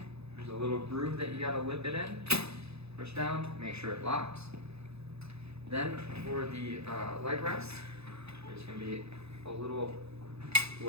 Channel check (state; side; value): late; left; 0.79 ms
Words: there's a little groove that you gotta lip it in. Push down, make sure it locks. Then for the leg rest, there's going to be a little